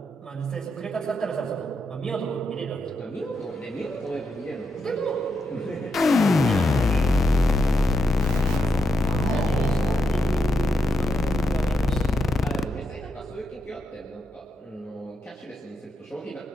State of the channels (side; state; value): both; normal; correlation 0.83